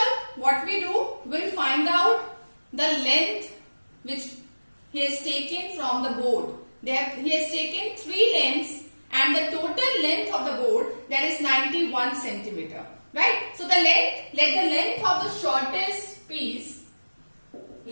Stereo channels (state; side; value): inverted; both; correlation -1.00